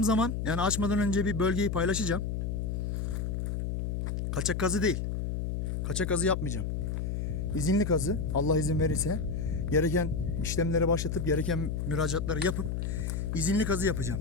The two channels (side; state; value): left; noise; hum, 2 dB below the sound